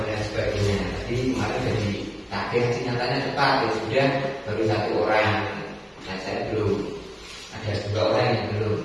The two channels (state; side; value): identical; both; correlation 1.00